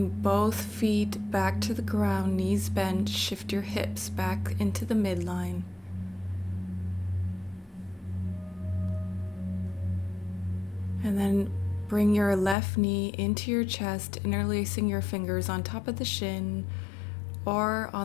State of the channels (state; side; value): drops out; right; at 12.6 s